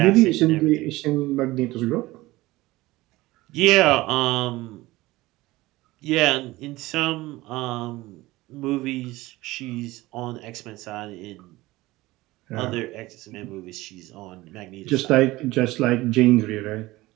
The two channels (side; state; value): left; quieter; 19.1 dB